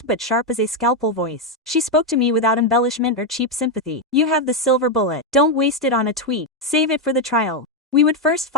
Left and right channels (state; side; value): normal; both; correlation 0.04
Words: but sharp as a scalpel voice. She spoke to me without embellishment or cheap sympathy. You have the silver bullet. Don't waste it on a tweet. Save it for the trial. We would first